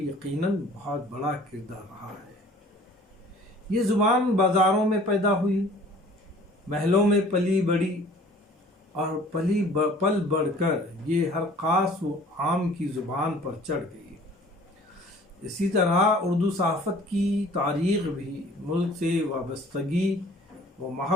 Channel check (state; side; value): normal; both; correlation 0.51